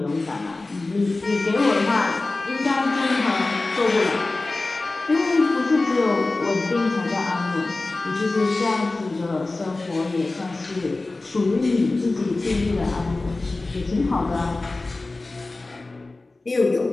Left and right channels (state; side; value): quieter; right; 3.2 dB